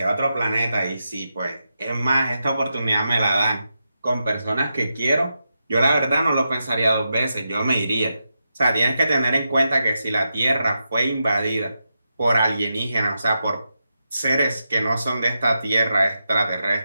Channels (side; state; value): both; inverted; correlation -0.87